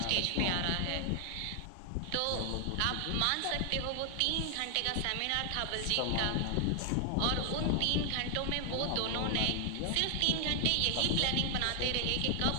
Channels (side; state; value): both; different; correlation 0.00